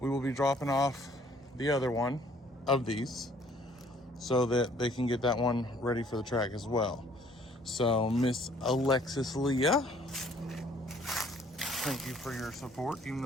will be dropping off the other one of these so that they can get that one ready for the track as well. So Miss Alexis Leah, thank you for your support. Even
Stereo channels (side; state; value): both; normal; correlation 0.59